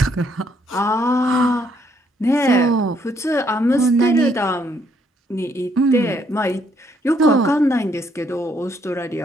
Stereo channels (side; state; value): both; normal; correlation 0.70